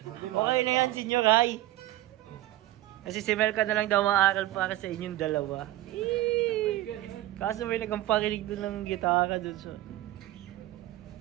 Okay na yan, senior high. Kasi si Mel ka na lang daw maaral para sa inyong dalawa. Kaso may nagamparinig doon ng gitara doon. So.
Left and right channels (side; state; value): left; quieter; 15.5 dB